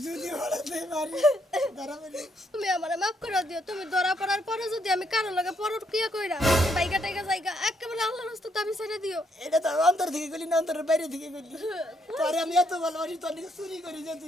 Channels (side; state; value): both; normal; correlation 0.74